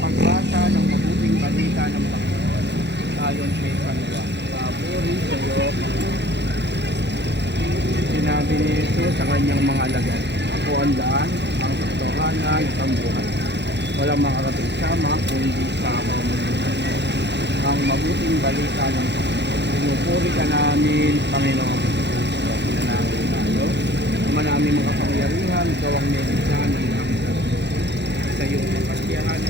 ng mabuting balita ng Panginoon ayon kay San Juan. Papuri sa iyo, Panginoon. Sinabi ni Jesus sa kanyang mga alagad, ako ang daan, ang katotohanan, ang buhay. Walang makarating sama kung hindi sa pamamagitan mo. Ang mabuting balita ng Panginoon. Pinupuri ka namin, Panginoon. Pinanangin tayo. Naman namin makapangyarihan, ikaw ang nilisan ng aming sarili. Sa iyong makasiyahan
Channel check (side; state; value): left; late; 0.50 ms